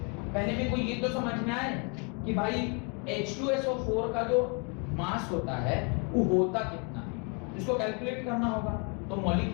पहले में कोई ये तो समझ में आए कि भाई H2SO4 का जो मास होता है वो होता कितना है, इसको कैलकुलेट करना होगा। तो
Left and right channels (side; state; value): right; quieter; 34.8 dB